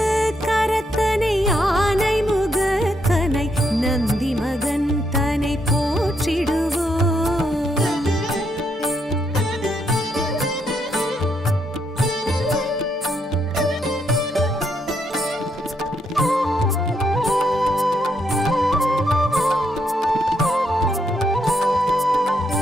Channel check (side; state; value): both; normal; correlation 0.77